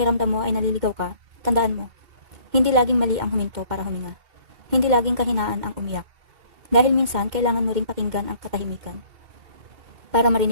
mo ay naliligaw ka, tandaan mo, hindi laging mali ang huminto para huminga. Hindi laging kahinaan ang umiyak. Dahil minsan kailangan mo ring pakinggan ang katahimikan para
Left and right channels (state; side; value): late; left; 2.1 ms